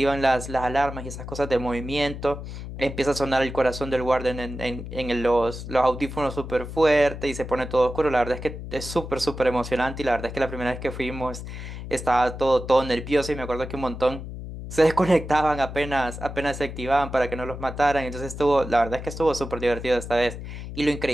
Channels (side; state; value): left; noise; hum, 9 dB below the sound